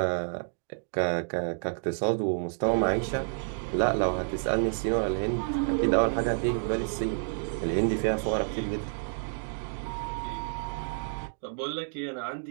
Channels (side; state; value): left; silent; digital silence